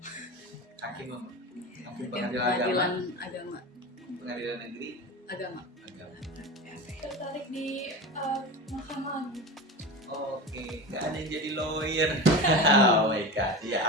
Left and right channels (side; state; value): both; normal; correlation 0.28